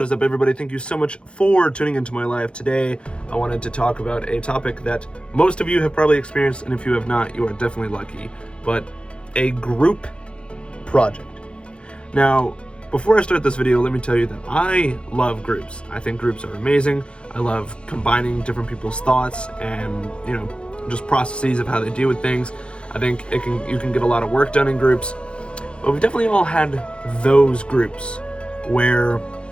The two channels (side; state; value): right; late; 0.056 ms